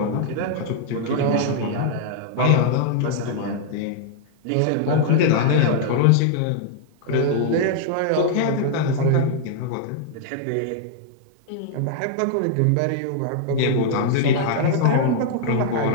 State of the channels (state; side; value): different; both; correlation -0.01